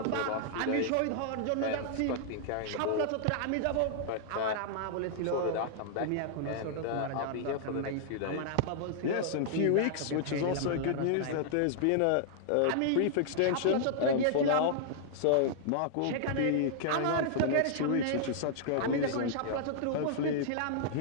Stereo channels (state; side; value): different; both; correlation -0.01